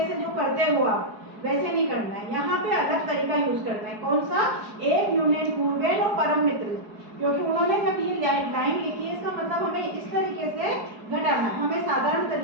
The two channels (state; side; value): late; left; 4.7 ms